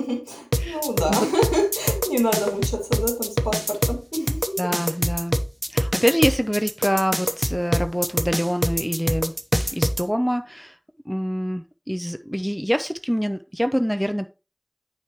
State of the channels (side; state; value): both; identical; correlation 1.00